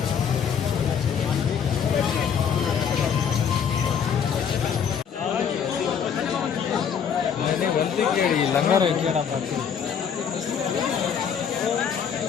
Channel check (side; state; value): right; quieter; 7.5 dB